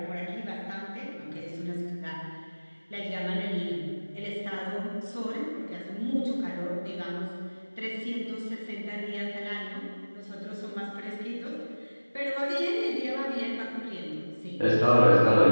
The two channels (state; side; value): inverted; both; correlation -1.00